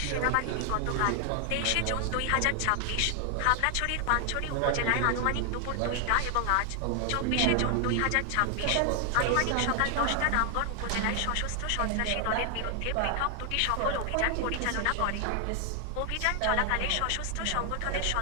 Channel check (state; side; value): different; both; correlation 0.00